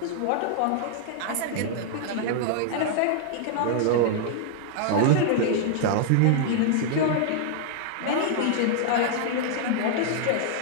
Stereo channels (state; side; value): different; both; correlation -0.01